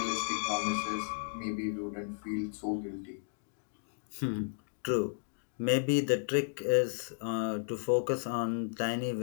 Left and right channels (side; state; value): right; silent; digital silence